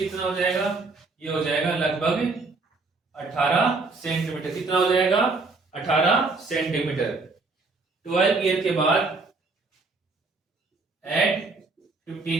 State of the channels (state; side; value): quieter; left; 3.7 dB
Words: हो जाएगा, ये हो जाएगा लगभग 18 सेंटीमीटर। कितना हो जाएगा, 18 सेंटीमीटर। 12 ईयर के बाद एट